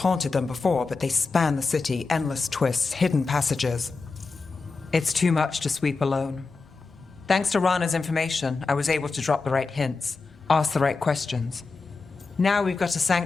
them before, but they span the city, endless twists, hidden passages. It's too much to sweep alone. Thanks to Rana's information, I was able to drop the right hints, ask the right questions. Now we've got a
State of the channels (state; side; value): quieter; right; 4.2 dB